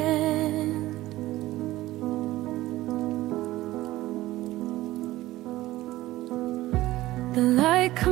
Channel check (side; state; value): left; quieter; 16.7 dB